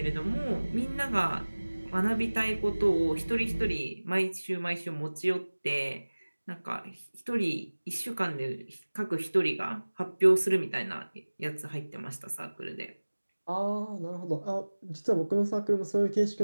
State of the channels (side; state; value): both; inverted; correlation -1.00